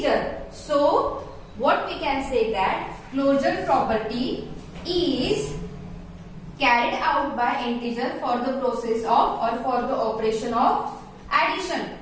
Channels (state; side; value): identical; both; correlation 1.00